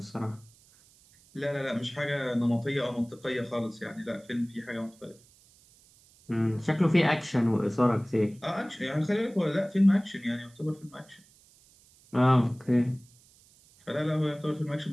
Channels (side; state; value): right; noise; hiss, 28 dB below the sound